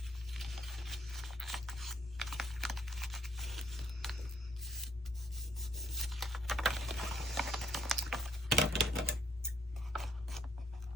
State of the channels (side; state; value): both; normal; correlation 0.67